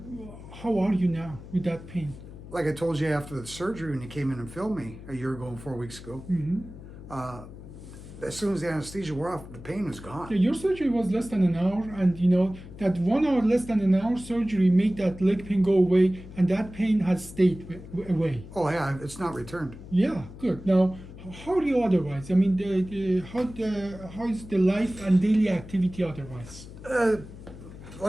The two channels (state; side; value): noise; left; hum, 15 dB below the sound